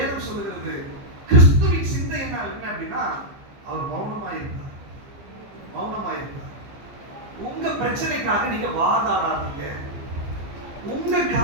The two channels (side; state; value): left; late; 15 ms